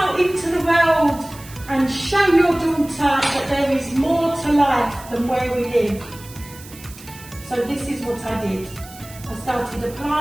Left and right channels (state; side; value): noise; right; hiss, 19 dB below the sound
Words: into the world and show your daughter that there is more to life than where we live." So this is what I did. I started